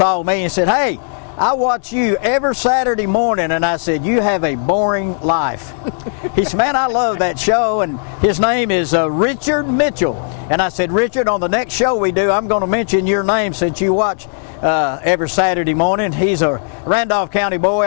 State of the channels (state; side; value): silent; right; digital silence